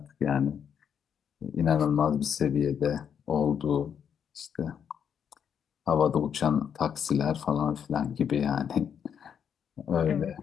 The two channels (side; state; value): right; quieter; 7.9 dB